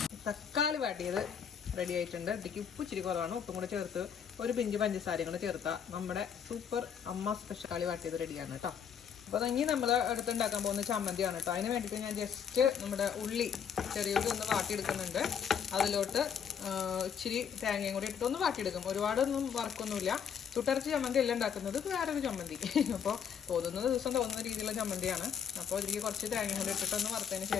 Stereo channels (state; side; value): quieter; right; 7.7 dB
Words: തക്കാളി വാട്ടിയത് റെഡി ആയിട്ടുണ്ട്. ഇതിലേക്ക് ഉപ്പ് ഇച്ചിരി കുറവാണ്. ഉപ്പും കൂടെ ചേർത്ത് ഒരു പിഞ്ച് പഞ്ചസാരയും കൂടെ ചേർത്താൽ നമ്മുടെ സൂപ്പർ അമ്മ സ്പെഷ്യൽ കളി വാട്ടിയത് റെഡിയാണ് കേട്ടോ. അപ്പോൾ ഇനി നമ്മൾ അടുത്തുണ്ടാക്കാൻ പോകുന്ന ചമ്മന്തിയാണ് കേട്ടോ. അതിന് വേണ്ടിയിട്ട് ഞാൻ ജസ്റ്റ് നമ്മുടെ ചെറിയുള്ളി ഒന്ന് വാട്ടിയെടുക്കുന്നുണ്ട്. അതിലോട്ട് ഇച്ചിരി തേങ്ങയും കൂടി ഇട്ട് ഒന്ന് വാട്ടിയെടുക്കും. ഒരുപാടൊന്നും വറക്കൊന്നുമില്ല. ചുട്ടരച്ച് ചമ്മന്തി എല്ലാം ഉണ്ടാക്കുന്നത് വേറൊരു ചമ്മന്തി. അപ്പോൾ തോന്നുന്ന ദിവസം തോന്നുന്ന രീതിയിലുള്ള ചമ്മന്തിയാണ്. അപ്പോൾ ഇതിലേക്ക് കുറച്ച് തേങ്ങയും കൂടി ഇട്ടിട്ടൊന്ന് വറുത്തതിന്